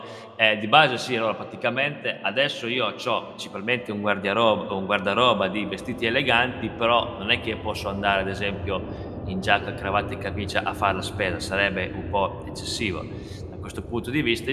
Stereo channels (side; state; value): both; identical; correlation 1.00